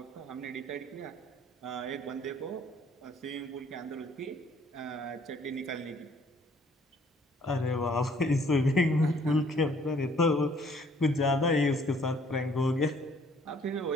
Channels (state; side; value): normal; both; correlation 0.60